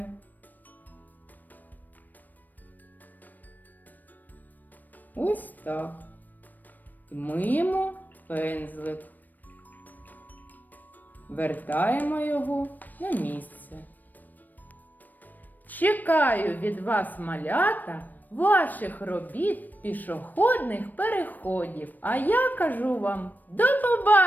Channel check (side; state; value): right; late; 0.087 ms